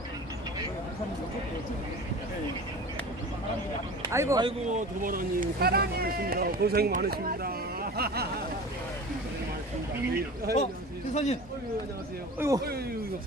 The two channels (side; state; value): both; normal; correlation 0.37